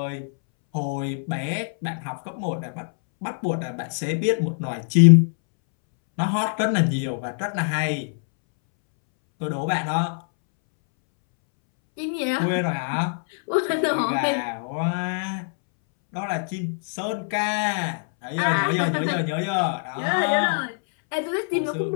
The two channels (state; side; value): silent; right; 63 dB below the other